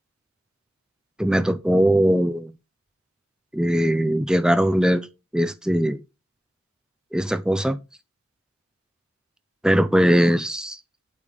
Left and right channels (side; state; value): both; normal; correlation 0.95